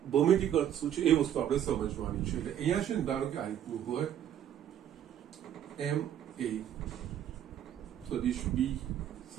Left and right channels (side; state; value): left; quieter; 10.4 dB